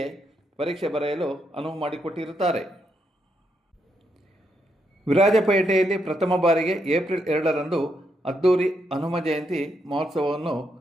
ಪರೀಕ್ಷೆ ಬರೆಯಲು ಅನುವು ಮಾಡಿಕೊಟ್ಟಿರುತ್ತಾರೆ. ವಿರಾಜಪೇಟೆಯಲ್ಲಿ ಪ್ರಥಮ ಬಾರಿಗೆ ಏಪ್ರಿಲ್ 2ರಂದು ಅದ್ದೂರಿ ಹನುಮ ಜಯಂತಿ ಮಹೋತ್ಸವವನ್ನು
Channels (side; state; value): both; normal; correlation 0.79